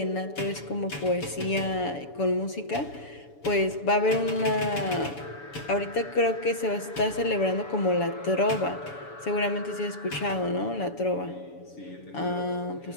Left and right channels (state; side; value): late; right; 7.0 ms